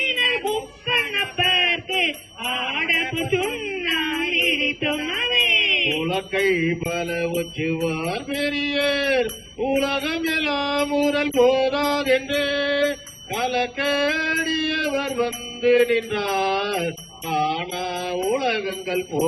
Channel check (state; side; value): identical; both; correlation 1.00